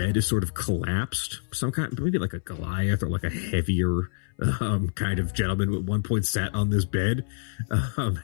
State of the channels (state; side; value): silent; right; 58 dB below the other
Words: is sort of collapsed. Some kind, maybe like a Goliath or like a heavier kind of gentleman at one point sat on this bed.